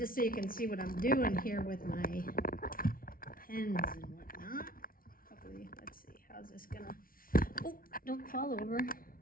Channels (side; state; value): right; late; 0.42 ms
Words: so you can see what I'm doing here with my pens and whatnot. Hopefully, let's see, how's this gonna, oh, don't fall over.